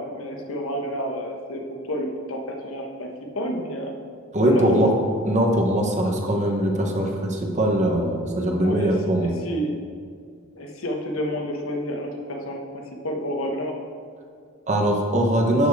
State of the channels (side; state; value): both; normal; correlation 0.49